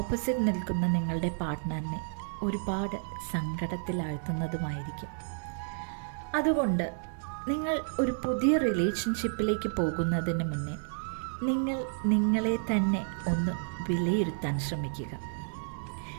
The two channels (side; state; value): left; silent; digital silence